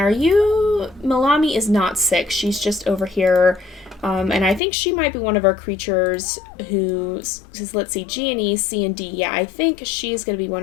you... Malami is not sick, she's just over here. And I think she might be one of our creatures who, let's see, G and E, C and D. Yeah, I think she's going to be one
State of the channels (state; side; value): drops out; right; at 4.6 s